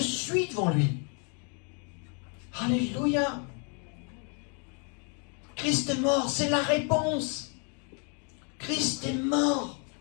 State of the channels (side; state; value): right; quieter; 38.5 dB